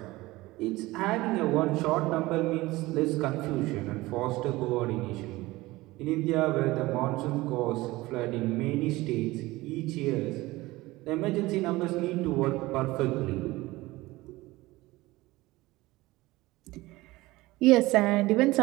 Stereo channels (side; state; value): left; quieter; 19.6 dB